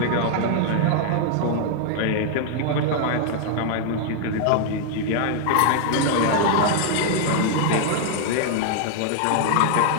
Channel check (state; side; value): different; both; correlation 0.00